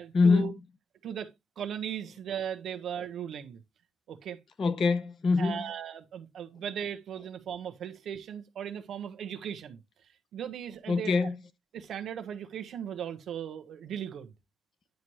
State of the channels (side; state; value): both; normal; correlation 0.84